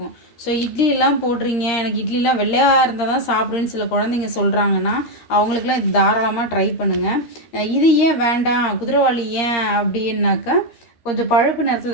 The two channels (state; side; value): late; right; 13 ms